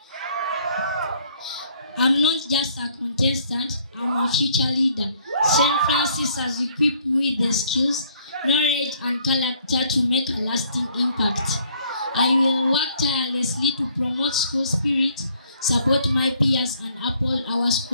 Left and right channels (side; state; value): both; inverted; correlation -0.63